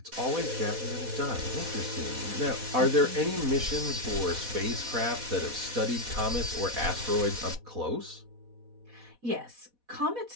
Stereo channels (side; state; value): left; late; 4.1 ms